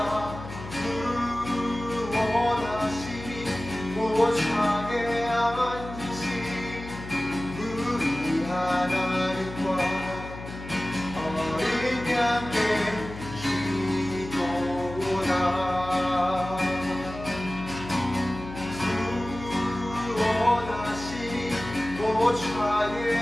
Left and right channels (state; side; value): noise; left; hum, 12 dB below the sound